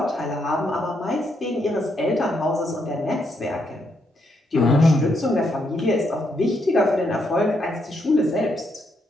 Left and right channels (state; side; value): normal; both; correlation 0.77